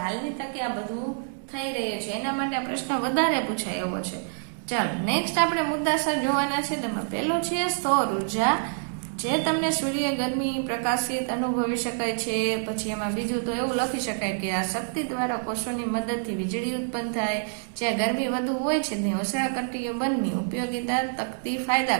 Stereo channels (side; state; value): left; silent; digital silence